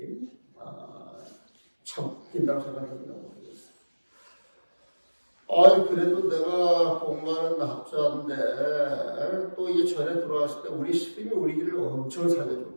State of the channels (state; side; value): inverted; both; correlation -1.00